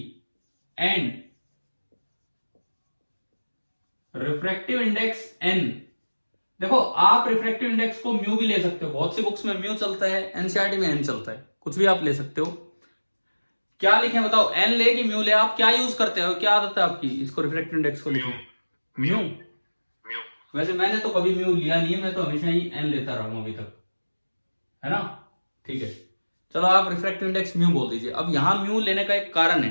and refractive index N। देखो आप रिफ्रैक्टिव इंडेक्स को म्यू भी ले सकते हो, बहुत सी बुक्स में म्यू चलता है, एनसीईआरटी में N चलता है, कुछ भी आप ले सकते हो। क्या लिखें बताओ, N ले कि म्यू ले? आप क्या यूज करते हो, क्या आदत है आपकी इसको रिफ्रैक्टिव इंडेक्स को लिखने? म्यू। वैसे मैंने तो कभी म्यू लिया नहीं है, मैं तो हमेशा ही N लेता रहा हूं अभी तक, है ना? ठीक है, चलो आप रिफ्रैक्टिव इंडेक्स म्यू बोल दीजिए। अब यहां म्यू लेने का एक कारण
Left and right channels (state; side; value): inverted; both; correlation -1.00